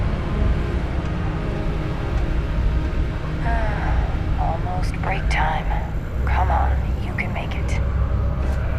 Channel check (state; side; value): identical; both; correlation 1.00